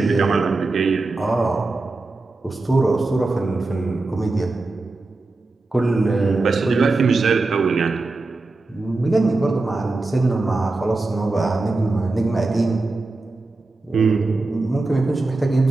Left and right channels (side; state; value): left; quieter; 3.3 dB